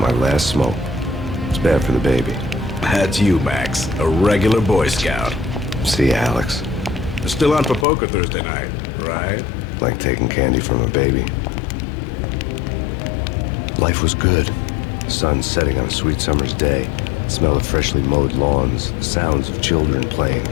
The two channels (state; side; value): drops out; right; at 7.9 s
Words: last smoke. It's bad for the baby. That's you, Max. A regular Boy Scout. See ya, Alex. Still on for poker Thursday night, right? Like taking candy from a baby. Life was good. Sun setting on a sweet summer's day. Smell of freshly mowed lawns. Sounds of children playing.